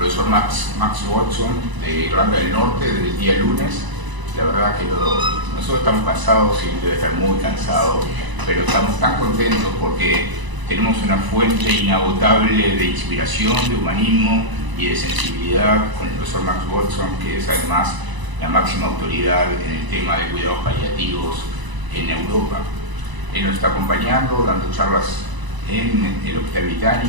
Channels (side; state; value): left; late; 1.0 ms